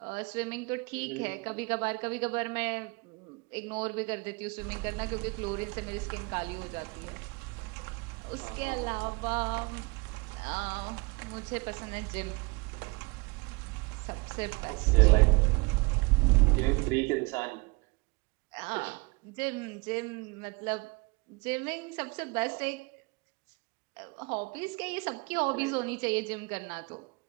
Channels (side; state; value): left; quieter; 27.9 dB